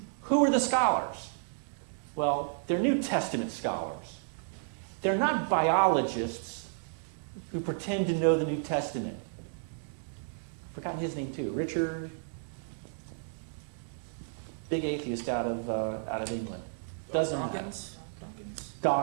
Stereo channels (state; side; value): silent; left; digital silence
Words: Who are the scholars? Well, they're New Testament scholars. They're not biologists who pretend to know the New Testament. I've forgotten his name too. Richard, big atheist out of England. Doesn't matter.